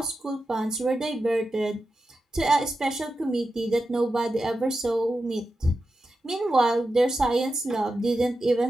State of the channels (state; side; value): normal; both; correlation 0.90